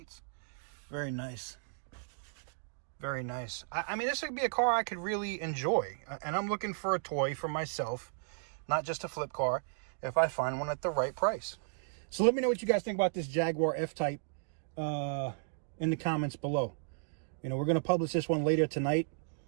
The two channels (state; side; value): silent; left; digital silence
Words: Very nice. Very nice. I mean, this would be a car I could really enjoy. And I'm looking for a toy for myself, not just a flip car, if I find one at the right price. So let me know what you guys think about this Jaguar F-Type in the comments below. You know, we're going to publish this one later tonight.